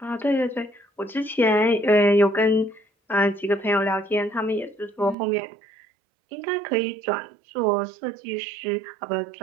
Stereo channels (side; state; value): left; drops out; at 5.2 s